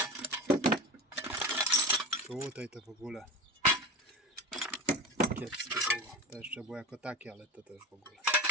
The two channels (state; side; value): normal; both; correlation 0.28